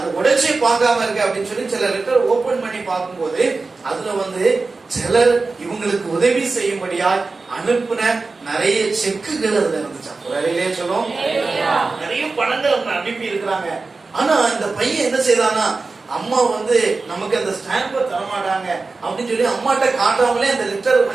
உடைச்சி பார்க்காம இருக்கு அப்படின்னு சொல்லி சில லெட்டர் ஓபன் பண்ணி பார்க்கும்போது அதுல வந்து சிலர் இவங்களுக்கு உதவி செய்யும்படியா அனுப்புன நிறைய செக்குகள் அதுல இருந்துச்சா. வேலையிலே சொல்லும், நிறைய பணங்கள் அவங்க அனுப்பி இருக்கிறாங்க. ஆனா இந்த பையன் என்ன செய்தானா, அம்மா வந்து நமக்கு அந்த ஸ்டாம்பை தரமாட்டாங்க அப்படின்னு சொல்லி அம்மாட்ட காட்டாமலே அந்த லெட்டர்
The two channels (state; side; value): quieter; left; 3.9 dB